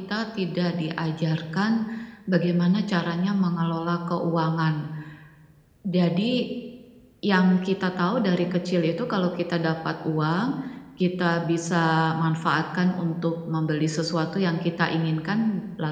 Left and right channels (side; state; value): both; identical; correlation 1.00